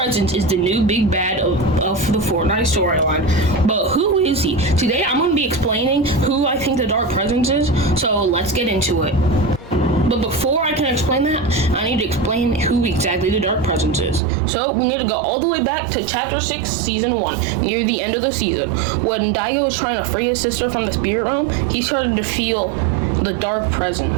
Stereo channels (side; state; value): left; drops out; at 14.2 s